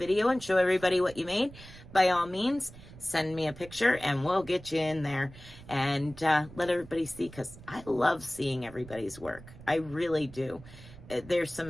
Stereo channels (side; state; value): right; noise; rumble, 18 dB below the sound